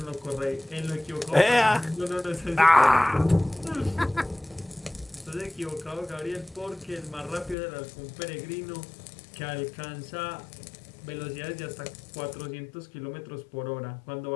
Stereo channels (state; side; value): drops out; right; at 7.6 s